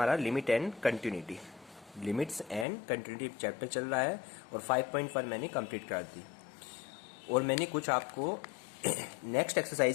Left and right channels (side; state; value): right; drops out; at 2.7 s